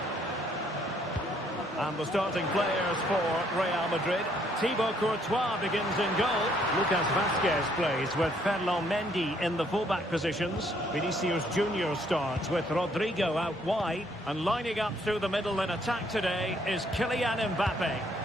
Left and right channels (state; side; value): normal; both; correlation 0.67